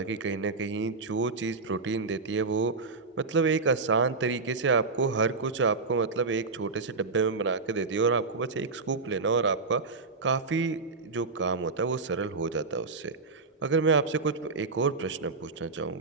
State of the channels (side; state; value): left; quieter; 4.1 dB